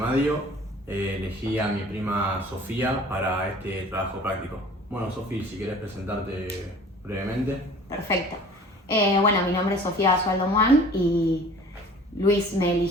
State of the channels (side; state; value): both; normal; correlation 0.47